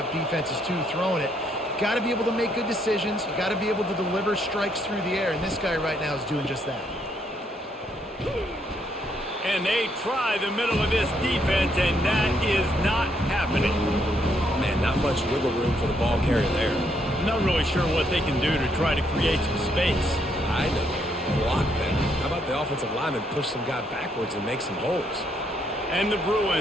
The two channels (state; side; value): normal; both; correlation 0.73